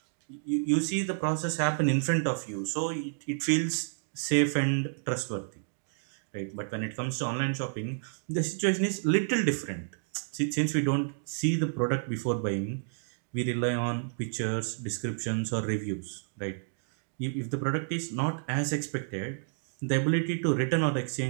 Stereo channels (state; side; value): silent; left; digital silence